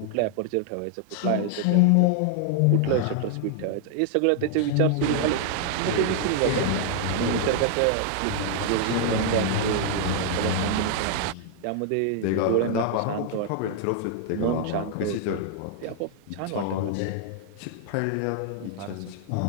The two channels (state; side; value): different; both; correlation 0.00